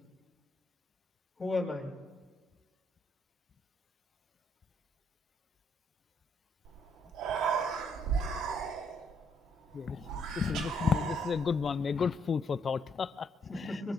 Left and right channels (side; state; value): both; normal; correlation 0.71